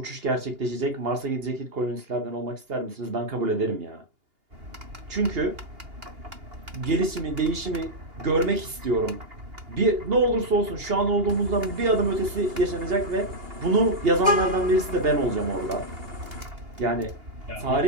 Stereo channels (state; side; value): late; left; 2.8 ms